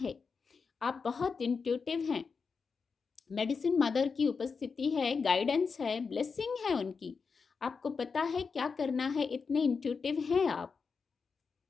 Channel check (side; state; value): right; quieter; 5.2 dB